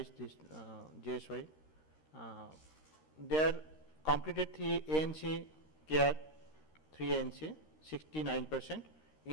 this JSY, there completed 3 ANC care, 3 ANC, 69%,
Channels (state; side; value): late; right; 13 ms